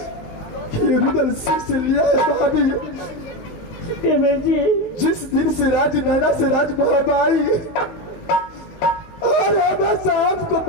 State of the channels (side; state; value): right; late; 19 ms